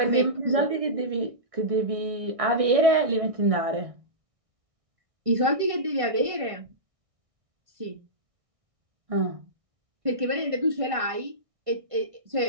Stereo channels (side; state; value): left; late; 1.6 ms